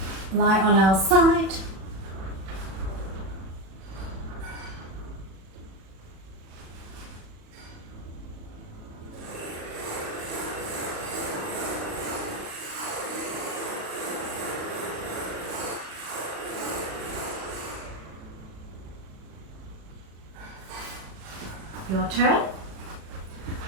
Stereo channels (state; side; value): late; left; 37 ms